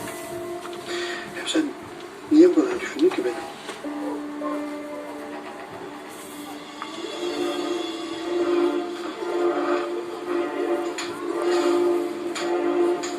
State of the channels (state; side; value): identical; both; correlation 1.00